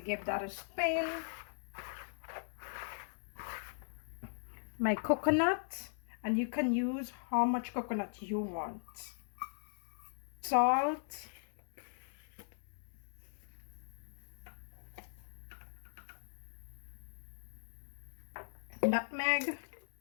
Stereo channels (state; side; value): silent; right; 52 dB below the other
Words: that a spin. My coconut, and you can use how much coconut you want. Salt. Nutmeg.